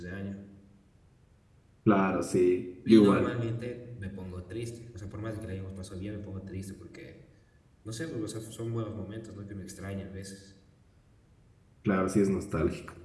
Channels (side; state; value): both; identical; correlation 1.00